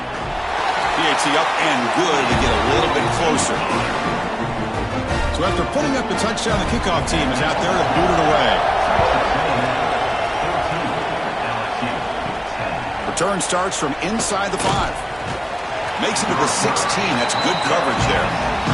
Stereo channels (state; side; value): identical; both; correlation 1.00